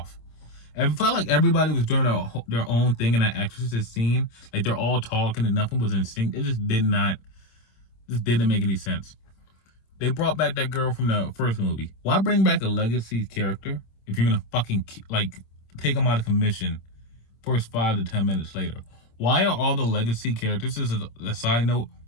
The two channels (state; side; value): late; right; 26 ms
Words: And it felt like everybody was doing their own thing in that exorcist scene. Like, they're all talking and nothing was in sync. It just didn't make any sense. They brought back that girl from the first movie. Why bring back a legacy character if you're gonna fucking like take them out of commission first 5 to 10 minutes later? Why are all the legacy characters, this is a side note,